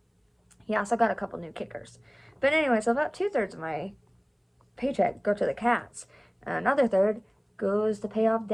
He also got a couple new kickers. But anyway, so about 2/3 of my paycheck go to the cats. And another third goes to pay off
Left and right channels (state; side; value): identical; both; correlation 1.00